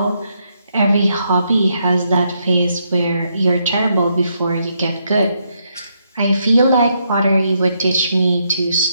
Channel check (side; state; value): both; inverted; correlation -0.77